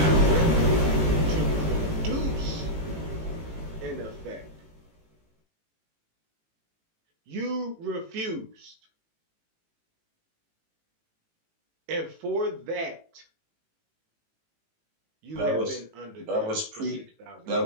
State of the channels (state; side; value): late; left; 18 ms